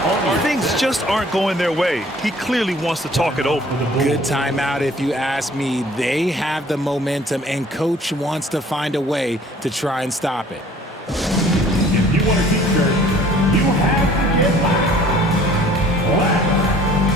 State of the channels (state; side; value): normal; both; correlation 0.54